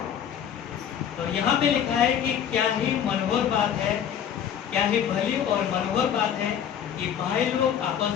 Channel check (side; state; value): right; quieter; 9.0 dB